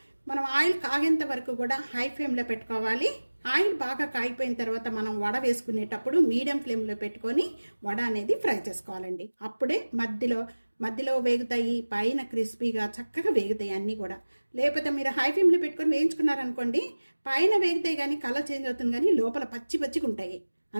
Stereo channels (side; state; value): both; inverted; correlation -1.00